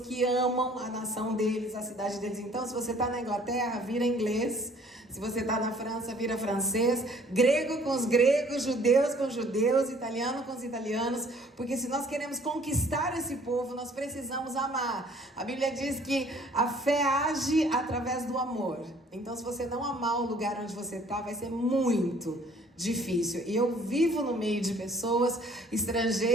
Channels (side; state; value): both; normal; correlation 0.57